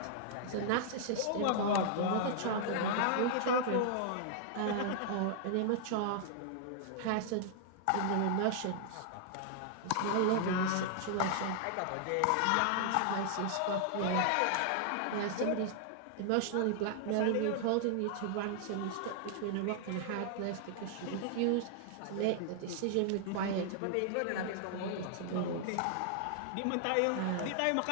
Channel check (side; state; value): both; different; correlation -0.01